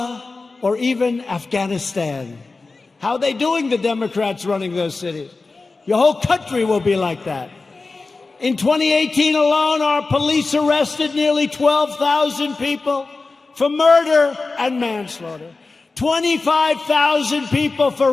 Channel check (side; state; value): right; quieter; 3.8 dB